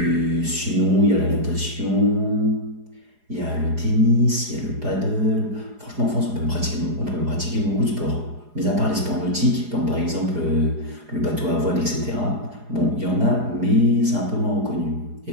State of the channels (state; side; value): late; left; 4.8 ms